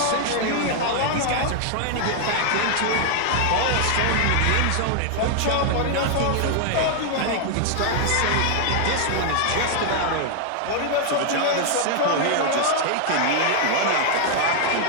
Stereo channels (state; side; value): different; both; correlation 0.00